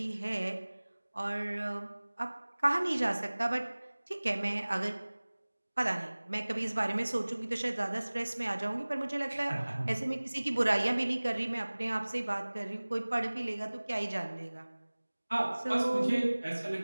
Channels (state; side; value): inverted; both; correlation -1.00